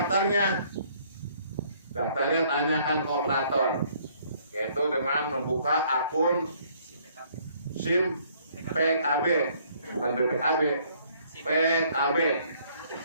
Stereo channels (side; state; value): both; inverted; correlation -0.63